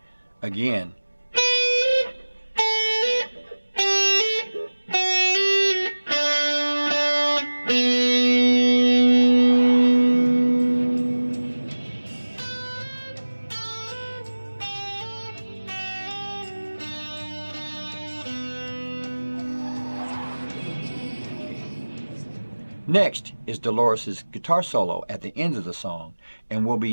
Again. Next is Dolores' guitar solo at the end of the song, and we'll be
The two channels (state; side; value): inverted; both; correlation -1.00